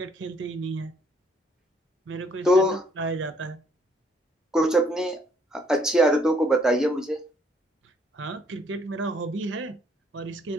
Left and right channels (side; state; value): both; normal; correlation 0.66